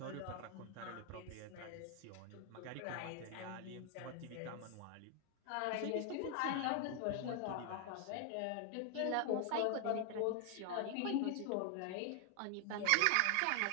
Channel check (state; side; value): different; both; correlation 0.00